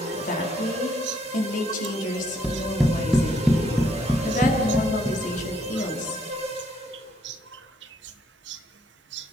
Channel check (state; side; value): normal; both; correlation 0.70